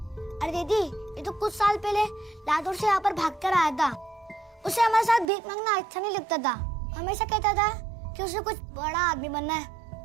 दीदी, ये तो कुछ साल पहले लातूर से यहाँ पर भाग कर आया था। उसे हमारे साथ भीख मांगना अच्छा नहीं लगता था। हमेशा कहता था कि उसे कुछ बड़ा आदमी बनना है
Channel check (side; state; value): left; drops out; at 5.2 s